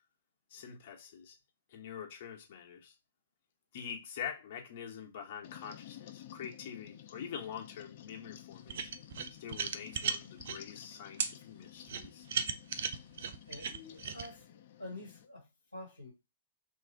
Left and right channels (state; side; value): inverted; both; correlation -0.50